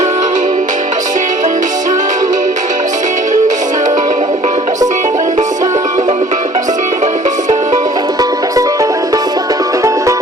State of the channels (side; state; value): both; normal; correlation 0.52